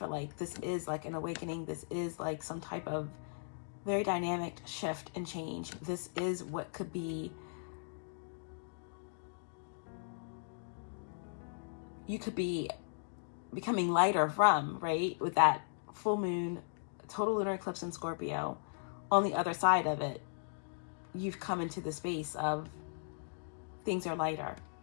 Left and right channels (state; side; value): silent; right; digital silence